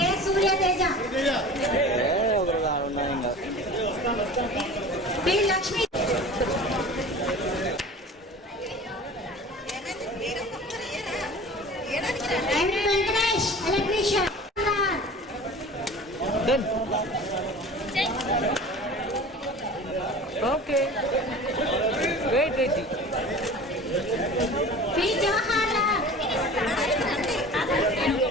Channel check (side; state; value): both; normal; correlation 0.39